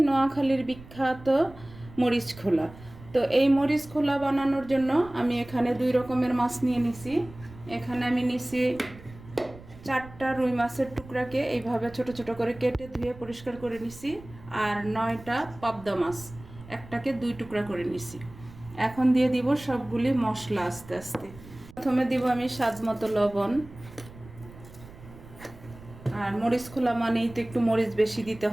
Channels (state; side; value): noise; right; rumble, 19 dB below the sound